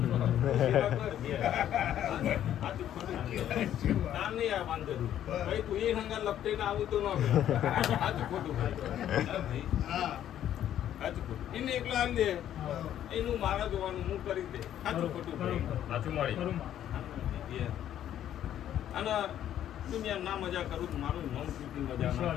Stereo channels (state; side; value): quieter; right; 11.1 dB